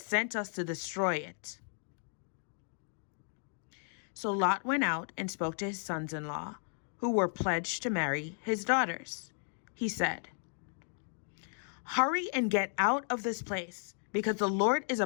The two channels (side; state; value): right; silent; 55 dB below the other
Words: sent us to destroy it." So Lot went out and spoke to his sons-in-law, who were pledged to marry his daughters. He said, "Hurry and get out of this place, because the Lord is